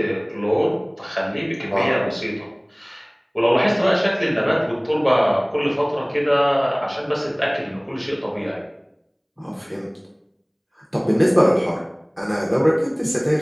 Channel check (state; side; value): identical; both; correlation 1.00